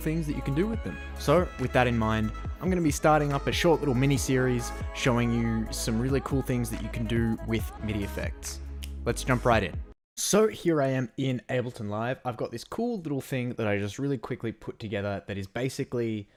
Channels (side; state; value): both; identical; correlation 1.00